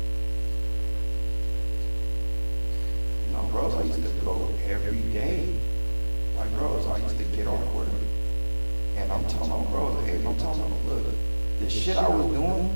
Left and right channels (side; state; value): both; inverted; correlation -1.00